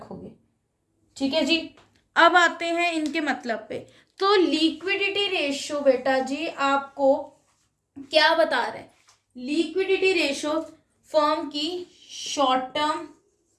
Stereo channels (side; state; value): both; identical; correlation 1.00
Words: ठीक है जी। अब आते हैं इनके मतलब पे। तो लिक्विडिटी रेशियो बेटा जी आपको क्या बता रहा है, लिक्विडिटी रेशियो फर्म की short term